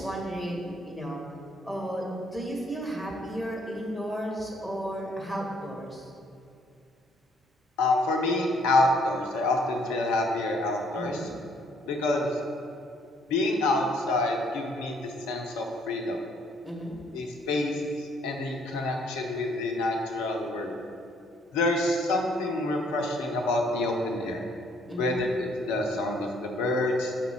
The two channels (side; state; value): both; normal; correlation 0.65